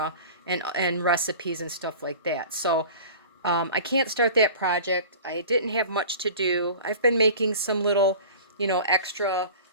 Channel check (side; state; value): both; inverted; correlation -0.40